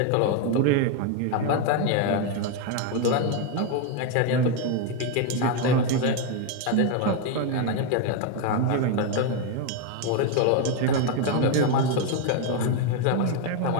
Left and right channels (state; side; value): different; both; correlation 0.01